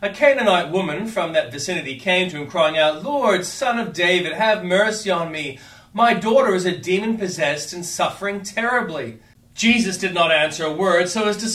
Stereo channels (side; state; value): both; identical; correlation 1.00